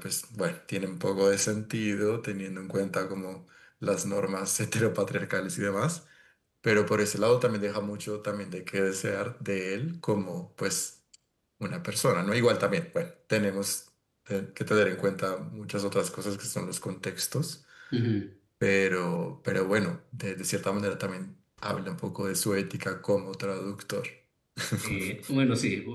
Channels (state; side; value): identical; both; correlation 1.00